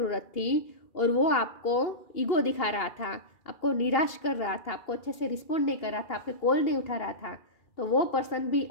थी, और वो आपको ईगो दिखा रहा था, आपको निराश कर रहा था, आपको अच्छे से रिस्पॉन्ड नहीं कर रहा था, आपके कॉल नहीं उठा रहा था। तो वो पर्सन भी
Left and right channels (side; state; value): right; late; 2.8 ms